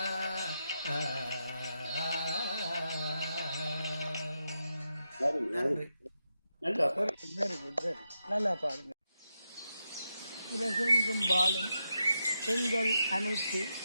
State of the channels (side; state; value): both; inverted; correlation -0.85